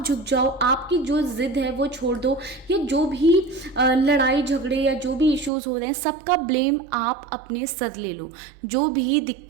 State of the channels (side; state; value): left; drops out; at 5.5 s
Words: झुक जाओ, आपकी जो जिद है वो छोड़ दो, या जो भी लड़ाई झगड़े या जो भी इश्यूज हो रहे हैं सबका ब्लेम आप अपने सर ले लो। जो भी